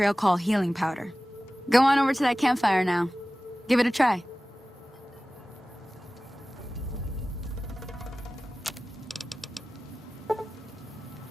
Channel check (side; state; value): both; normal; correlation 0.97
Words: call healing powder. Go on over to that campfire now. Give it a try.